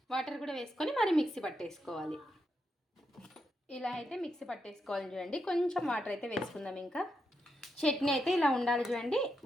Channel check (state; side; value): normal; both; correlation 0.84